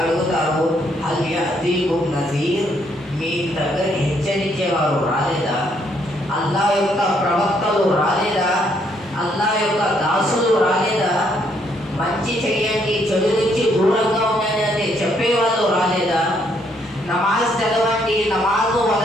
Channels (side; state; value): both; normal; correlation 0.71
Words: హల్ యఅతీకుం నజీర్, మీ దగ్గర హెచ్చరించేవారు రాలేదా? అల్లాహ్ యొక్క ప్రవక్తలు రాలేదా? అల్లాహ్ యొక్క దాసులు రాలేదా? మంచి చేయండి, చెడు నుంచి దూరంగా ఉండండి అని చెప్పేవాళ్ళు రాలేదా? నమాజ్ చదవండి, నమాజ్